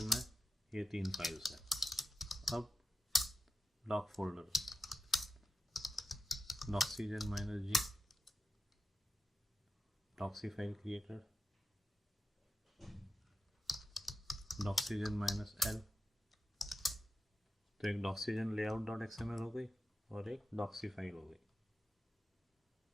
में ये 3 फाइल्स हैं। अब doc folder, Doxygen -G, doxy file created, Doxygen -L, तो एक डॉक्सीजन लेआउट डॉट XML हो गई और एक डॉक्सी फाइल हो गई।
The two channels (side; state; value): both; normal; correlation 0.90